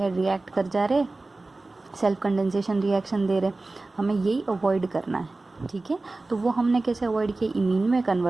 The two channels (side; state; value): left; quieter; 3.2 dB